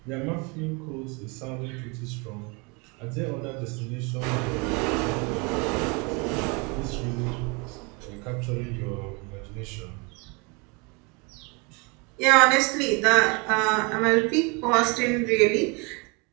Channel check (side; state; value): left; quieter; 30.0 dB